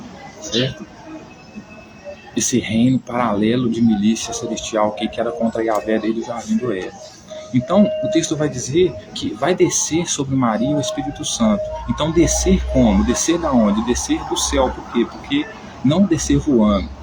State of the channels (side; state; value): both; identical; correlation 1.00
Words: certo? esse reino paralelo de milícia celestial que era contra Yahvé desde o Jardim do Éden. Então, o texto vai dizer que vai descer sobre Maria o Espírito Santo. Então, descer como? Descer da onde? Descer do céu. Por quê? Porque não descer voando,